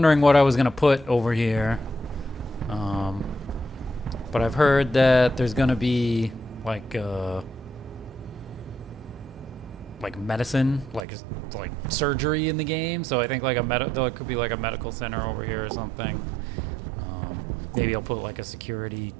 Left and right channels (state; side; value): drops out; left; at 11.1 s